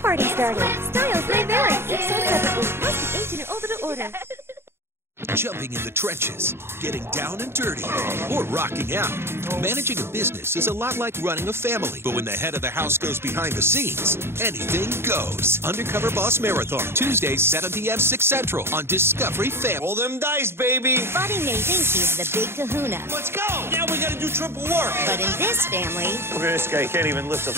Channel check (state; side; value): late; left; 0.12 ms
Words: started. Styles may vary. Each sold separately. Must be 18 or older to order. Jumping in the trenches, getting down and dirty, or rocking out. Managing a business is a lot like running a family, but when the head of the house goes behind the scenes, anything goes. Undercover Boss Marathon, Tuesdays, 7 p.m., 6 Central on Discovery Family. Roll them dice, baby. Buddy may think he's the big kahuna. Let's go. Now we gotta do triple work. But in this family, Look at this guy, he can't even lift a